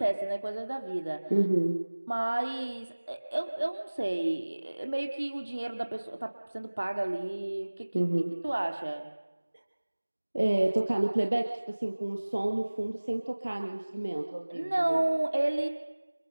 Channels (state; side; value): inverted; both; correlation -1.00